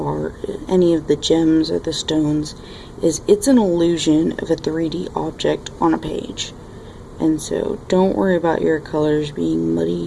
Any of the gems or the stones, it's an illusion of a 3D object on a page. And so don't worry about your colors being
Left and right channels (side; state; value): both; identical; correlation 1.00